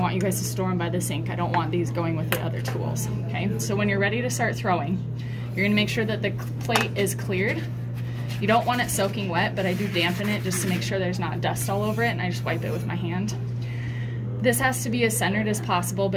you guys to store them by the sink. I don't want these going with the other tools, okay? So when you're ready to start throwing, you're gonna make sure that the plate is cleared. You don't want it soaking wet, but I do dampen it just to make sure there's not dust all over it, and I just wipe it with my hand. This has to be as centered as possible,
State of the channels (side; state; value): both; identical; correlation 1.00